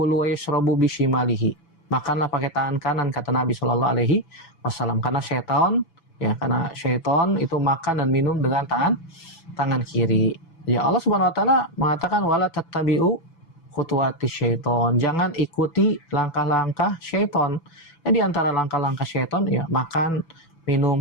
wa yashrabu bishimalihi. Makanlah pakai tangan kanan, kata Nabi sallallahu alaihi wasallam. Karena syaitan itu makan dan minum dengan tangan kiri. Ya, Allah Subhanahu wa taala mengatakan wala tattabi'u khutuwati syaiton, jangan ikuti langkah-langkah syaiton. Ya, di antara langkah-langkah syaiton, ya, makan,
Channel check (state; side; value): late; right; 6.0 ms